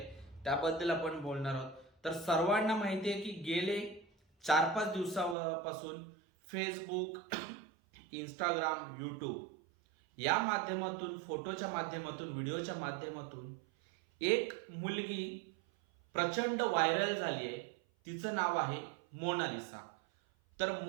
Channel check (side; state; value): left; drops out; at 5.4 s